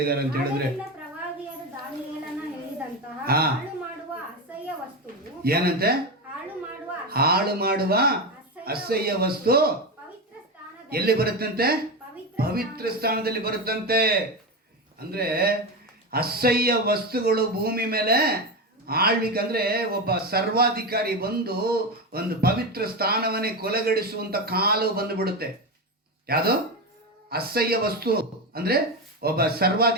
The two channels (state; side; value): normal; both; correlation 0.16